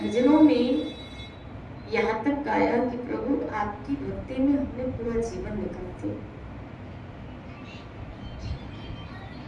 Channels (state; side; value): identical; both; correlation 1.00